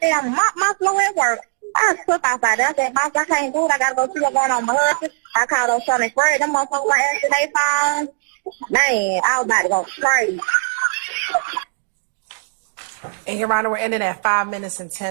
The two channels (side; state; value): left; silent; digital silence